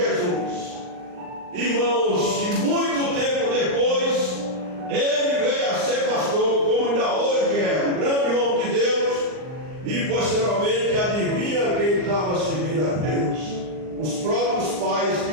Irmãos, e muito tempo depois, ele veio a ser pastor, como ainda hoje é, um grande homem de Deus. E posteriormente, adivinha quem estava servindo a Deus? Os próprios pais que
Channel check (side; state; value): left; late; 39 ms